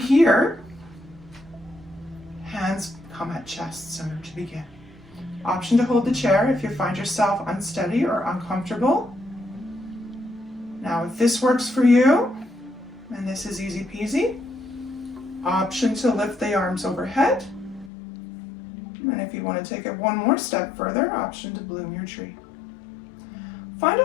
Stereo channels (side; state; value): right; drops out; at 17.9 s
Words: hands come at chest center to begin. Option to hold the chair if you find yourself unsteady or uncomfortable. Now if this works for you, and this is easy peasy, option to lift the arms overhead. And if you want to take it one more step further, option to bloom your tree. Find a